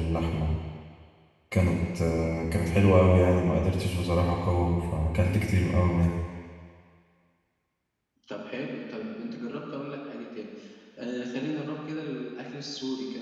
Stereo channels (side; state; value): both; identical; correlation 1.00